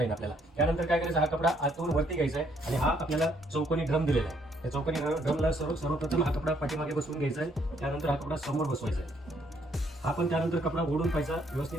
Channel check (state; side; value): normal; both; correlation 0.69